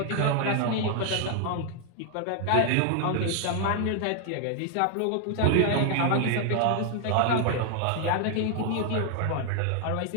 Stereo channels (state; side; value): different; both; correlation 0.00